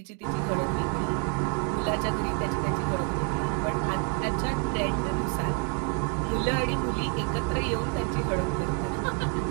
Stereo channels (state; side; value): quieter; left; 33.7 dB